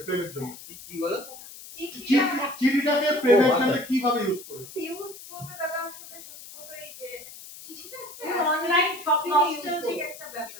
প্রেমের জন্য? কি বলো? চিঠিটাকে প্রেমের জন্য কিভাবে ইউজ করেছো? ইউজ বলতে দাদা আসলে সত্যি কথা এই যে চিঠিটা একটা তুমি অনলাইন শপিং নস্টালজিক একটা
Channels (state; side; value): noise; left; hiss, 15 dB below the sound